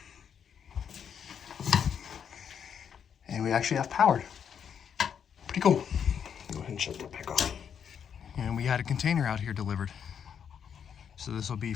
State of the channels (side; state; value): right; quieter; 7.8 dB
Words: and we actually have powered. Pretty cool. Go ahead and shut that back off. And we had a container out here delivered. So this will be